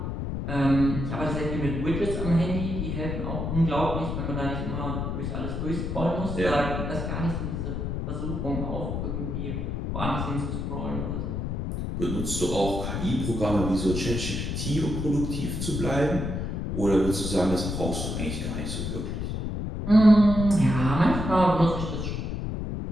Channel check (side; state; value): left; noise; rumble, 3 dB below the sound